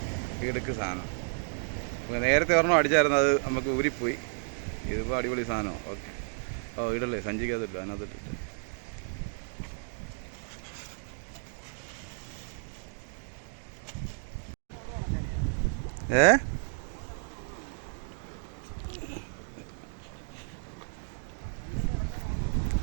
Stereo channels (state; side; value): silent; left; digital silence